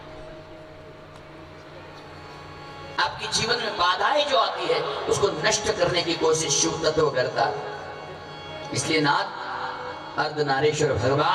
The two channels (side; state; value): both; identical; correlation 1.00